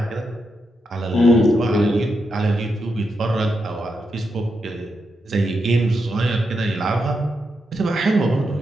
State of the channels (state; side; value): normal; both; correlation 0.84